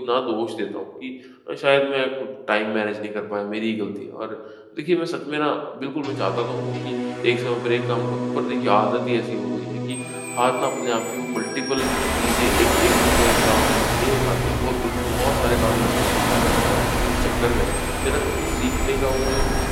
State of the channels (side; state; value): both; identical; correlation 1.00